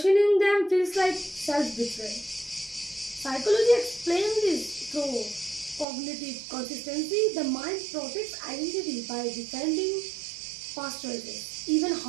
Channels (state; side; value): drops out; left; at 5.9 s